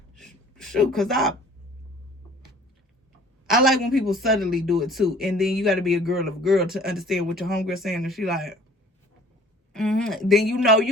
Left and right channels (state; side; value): normal; both; correlation 0.52